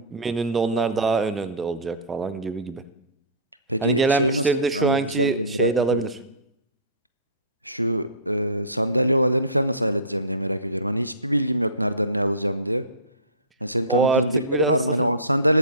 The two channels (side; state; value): both; inverted; correlation -0.31